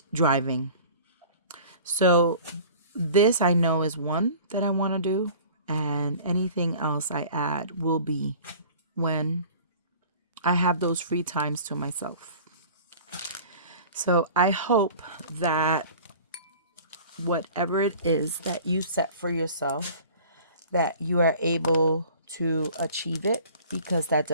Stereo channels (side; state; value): both; inverted; correlation -0.45